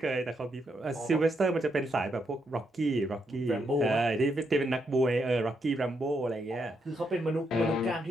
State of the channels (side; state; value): both; normal; correlation 0.79